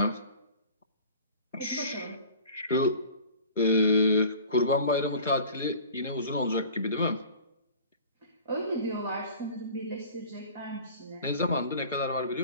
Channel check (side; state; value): both; inverted; correlation -0.43